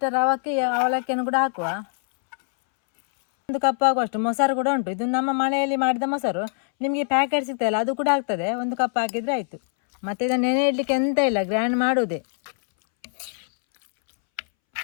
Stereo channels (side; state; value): right; silent; 63 dB below the other